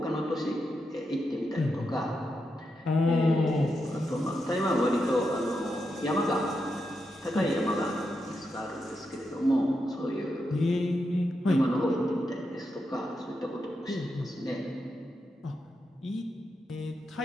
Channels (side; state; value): both; normal; correlation 0.85